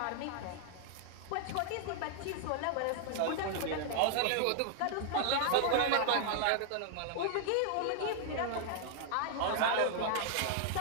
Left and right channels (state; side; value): different; both; correlation 0.00